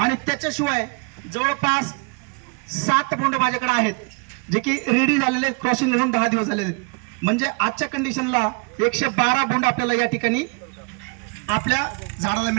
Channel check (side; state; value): left; quieter; 32.2 dB